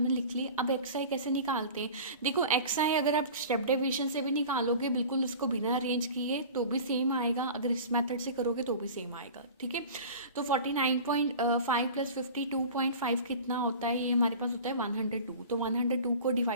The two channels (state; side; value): inverted; both; correlation -0.38